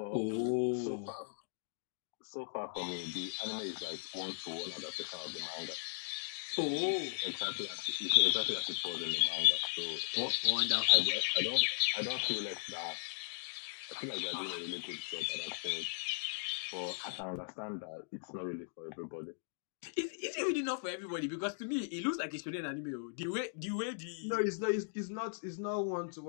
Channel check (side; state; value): right; silent; digital silence